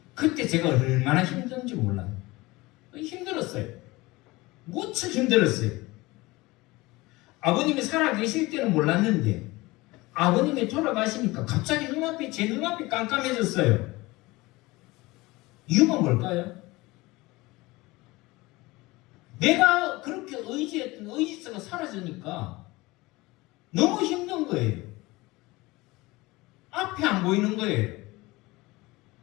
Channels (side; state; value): right; quieter; 21.3 dB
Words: 그때 제가 얼마나 힘든지 몰라요. 힘들었어요. 무척 힘들었어요. 아버님이 살아계실 때는 몰랐는데 아버님이 돌아가시니까 갑자기 제 눈앞이 깜깜해졌어요. 이유가 뭘까요? 내가 그렇게 의지했던 의지서가 사라지니까 너무 힘든 거예요. 앞이 안 보이는 거예요.